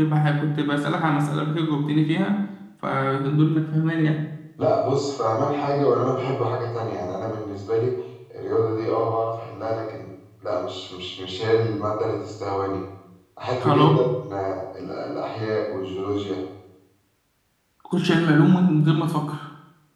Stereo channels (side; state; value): both; identical; correlation 1.00